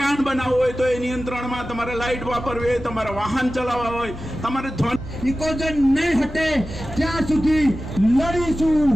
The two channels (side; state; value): both; normal; correlation 0.95